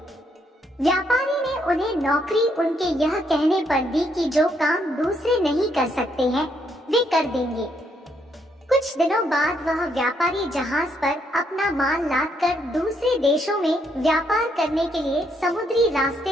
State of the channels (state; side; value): normal; both; correlation 0.73